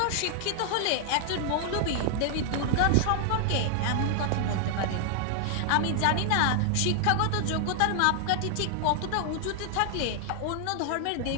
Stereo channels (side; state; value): both; different; correlation 0.00